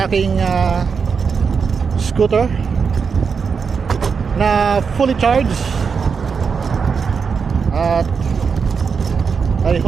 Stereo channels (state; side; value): quieter; left; 5.8 dB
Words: aking scooter na fully charged. At I